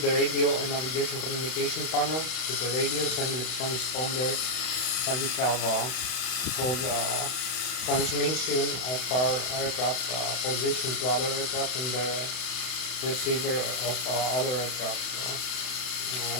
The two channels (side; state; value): right; late; 32 ms